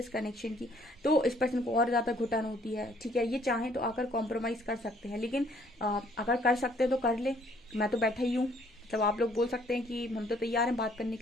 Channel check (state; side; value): normal; both; correlation 0.63